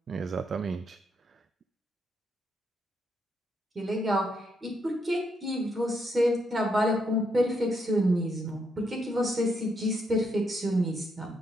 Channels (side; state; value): both; normal; correlation 0.77